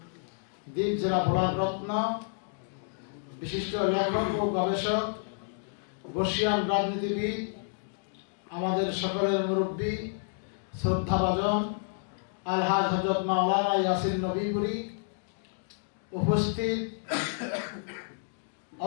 দ্বীপ জেলা ভোলার রত্ন, বিশিষ্ট লেখক ও গবেষক, বর্ষিয়ান রাজনীতিবিদ, আমাদের সকলের মুরব্বী, শ্রদ্ধাভাজন আলহাজ হযরত মাওলানা ইয়াসিন নবীপুরী, উপস্থিত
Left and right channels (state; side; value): silent; right; digital silence